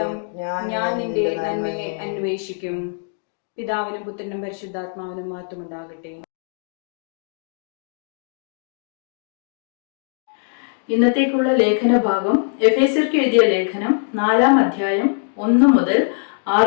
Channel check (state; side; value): silent; right; digital silence